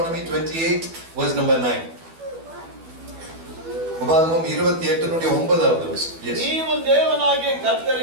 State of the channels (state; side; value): late; left; 12 ms